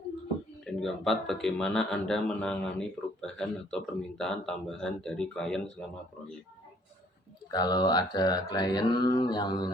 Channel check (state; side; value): normal; both; correlation 0.61